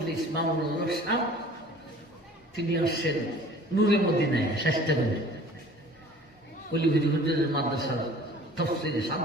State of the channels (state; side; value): normal; both; correlation 0.48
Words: মামুনুল হক সাহেব তিনি আসছেন নূরে মদিনায় চেষ্টা করে অলিভিরি হুজুরের মাদ্রাসার তফসির 7